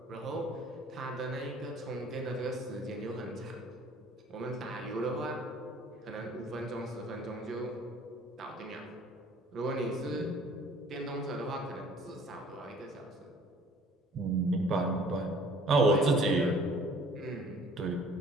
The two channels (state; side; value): normal; both; correlation 0.53